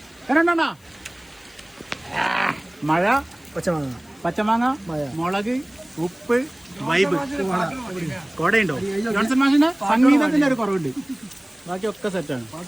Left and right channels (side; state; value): left; noise; hiss, 30 dB below the sound